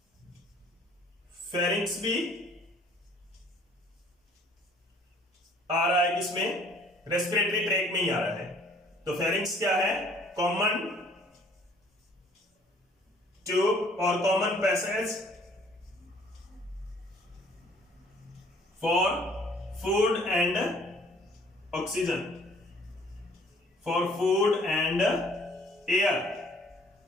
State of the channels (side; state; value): both; normal; correlation 0.57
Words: फेरिंक्स भी आ रहा है किसमें? रेस्पिरेटरी ट्रैक में ही आ रहा है। तो फेरिंक्स क्या है? कॉमन ट्यूब और common passage for food and oxygen, for food and air.